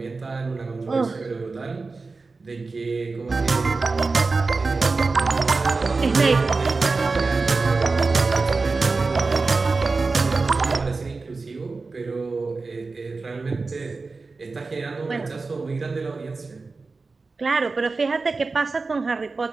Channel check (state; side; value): quieter; left; 4.0 dB